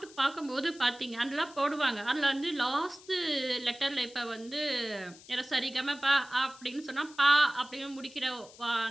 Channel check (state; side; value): noise; left; hiss, 21 dB below the sound